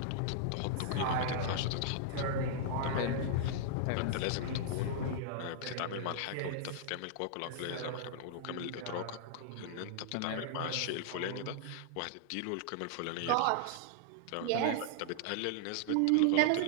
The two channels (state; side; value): different; both; correlation -0.01